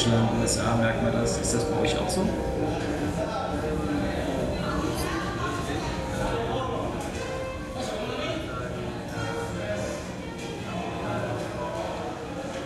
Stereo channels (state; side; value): identical; both; correlation 1.00